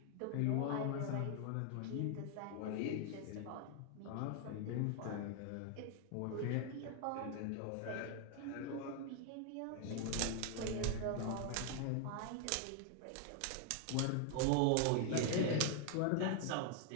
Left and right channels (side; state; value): both; different; correlation 0.00